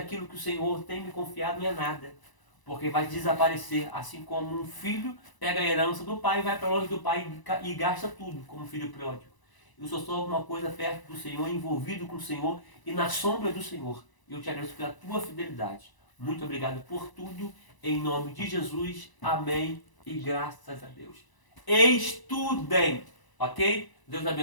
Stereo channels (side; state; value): right; late; 1.0 ms